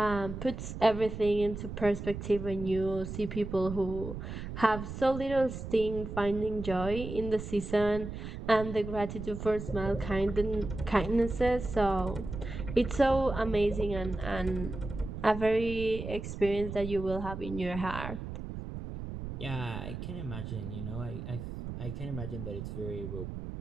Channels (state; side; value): noise; right; rumble, 7 dB below the sound